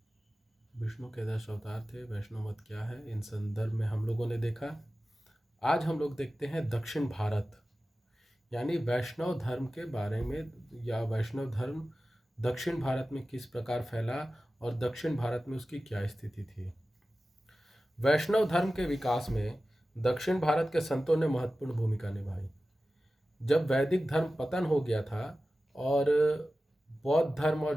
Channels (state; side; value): normal; both; correlation 0.95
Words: विष्णु के 10 अवतार थे। वैष्णव मत क्या है, इन संदर्भ में हम लोगों ने देखा। आज हम लोग देखते हैं दक्षिण भारत, यानी वैष्णव धर्म के बारे में, या वैष्णव धर्म दक्षिण भारत में किस प्रकार फैला और दक्षिण भारत में उसकी क्या स्थिति थी। वैष्णव धर्म के विकास में दक्षिण भारत के संतों ने महत्वपूर्ण भूमिका निभाई। जब वैदिक धर्म पतन हो गया था और बौद्ध धर्म